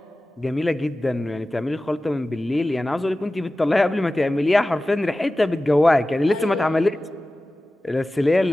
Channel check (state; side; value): normal; both; correlation 0.96